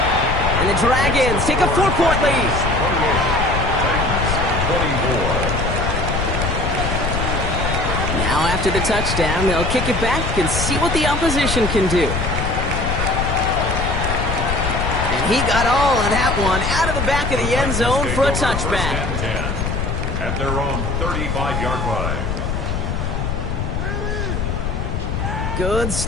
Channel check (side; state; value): left; noise; rumble, 2 dB below the sound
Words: And the Dragons take a 4-point lead. 28, Titans 24. Now after the touchdown, they'll kick it back and see what the opposition can do. And he got all of that one out of the back of the end zone for a touchback. First and 10 at their own 35-yard line. Good